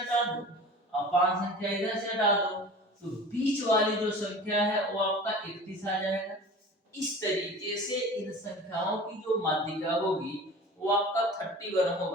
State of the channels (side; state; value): both; normal; correlation 0.39